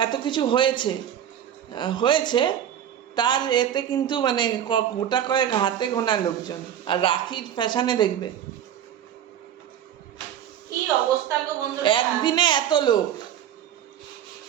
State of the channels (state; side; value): quieter; left; 10.1 dB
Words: এত কিছু হয়েছে তার এতে কিন্তু মানে গোটা কয়েক হাতে গোনা লোকজন। আর রাখির ফ্যাশনে দেখবে কি অবস্থা গো বন্ধুরা, একদিনে এত লোক।